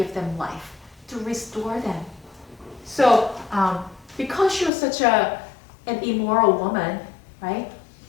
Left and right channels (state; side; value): drops out; right; at 4.7 s